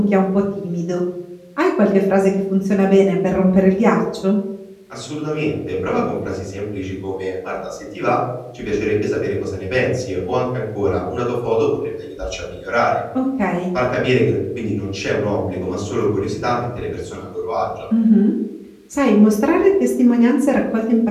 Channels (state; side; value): identical; both; correlation 1.00